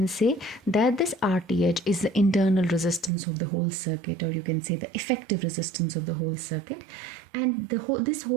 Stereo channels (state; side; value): drops out; left; at 3.1 s